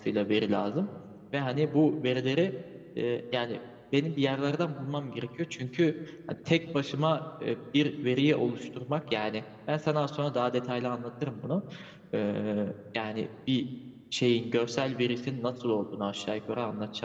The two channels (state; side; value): identical; both; correlation 1.00